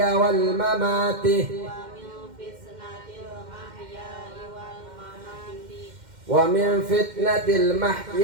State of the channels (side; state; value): left; late; 2.1 ms